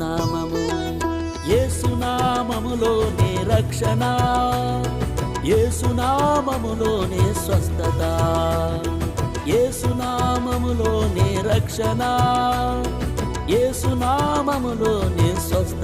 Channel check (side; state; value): both; identical; correlation 1.00